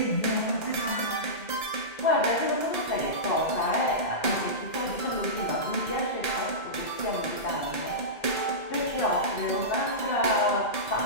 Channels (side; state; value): right; late; 1.8 ms